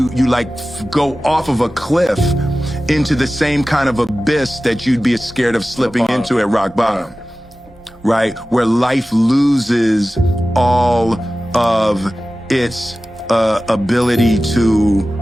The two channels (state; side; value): normal; both; correlation 0.96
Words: like go off of a cliff into the same kind of abyss that you'd be scared of slipping into at rock bottom. Right? Where life loses all of its ability